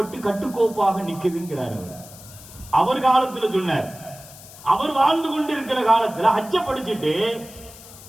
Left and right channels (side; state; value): left; noise; hiss, 18 dB below the sound